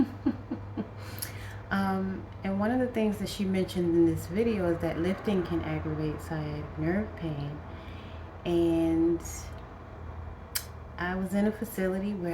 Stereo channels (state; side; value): identical; both; correlation 1.00